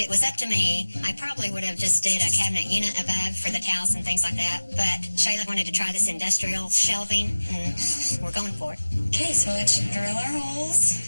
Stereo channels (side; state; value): both; inverted; correlation -1.00